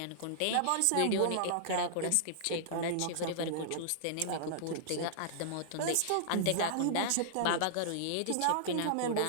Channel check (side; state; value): both; different; correlation -0.01